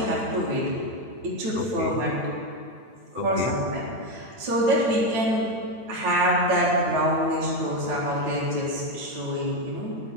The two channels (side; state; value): left; late; 9.0 ms